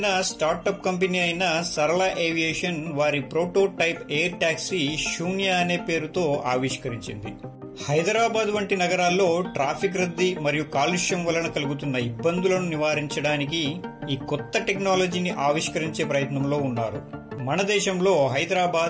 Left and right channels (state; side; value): identical; both; correlation 1.00